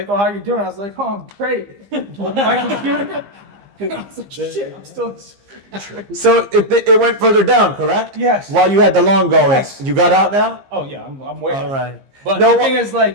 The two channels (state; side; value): late; left; 15 ms